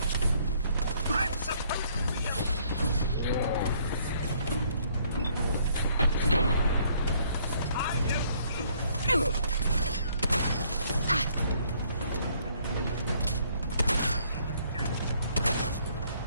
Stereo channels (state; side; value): inverted; both; correlation -0.65